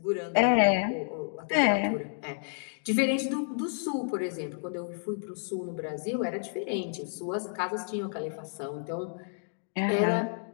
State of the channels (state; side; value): silent; right; digital silence